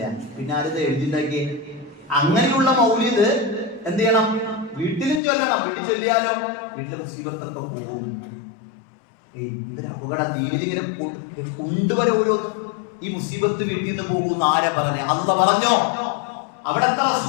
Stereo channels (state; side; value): drops out; right; at 5.2 s